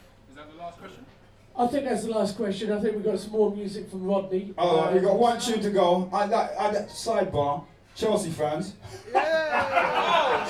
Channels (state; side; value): identical; both; correlation 1.00